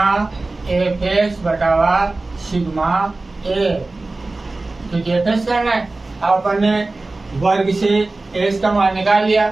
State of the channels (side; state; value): left; quieter; 3.2 dB